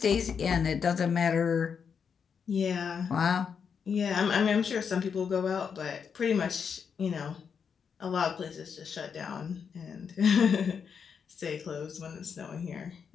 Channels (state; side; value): quieter; right; 6.6 dB